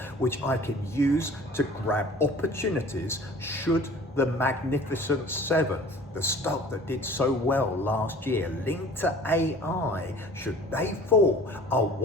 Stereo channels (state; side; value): normal; both; correlation 0.46